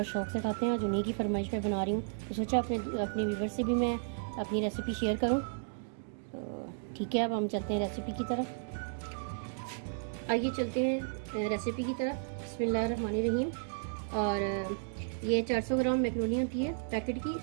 शौक़ से खाते हैं। आज उन्हीं की फरमाइश पे बना रही हूँ, तो सोचा अपने व्यूअर्स से भी मैं अपनी रेसिपी शेयर करूँ। तो ठीक है, अब हम चलते हैं रेसिपी की तरफ। आइए चलते हैं रेसिपी की तरफ। बिस्मिल्लाहिर्रहमानिर्रहीम। और ये 400 ग्राम मैकरोनी होती है पैकेट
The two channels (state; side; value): silent; left; digital silence